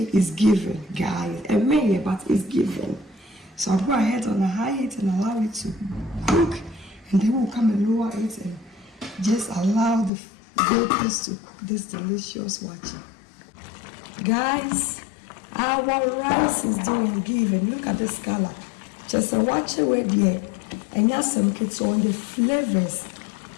is given, guys. A minute, but it's given. So I'll go ahead on a high heat and allow it to cook, and then we'll come and lower it and just allow the vapors to cook this delicious waakye. Guys, our rice is doing given. Look at this color. Just a waakye with here, and yes, some kids on the flavors.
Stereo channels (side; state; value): right; drops out; at 10.1 s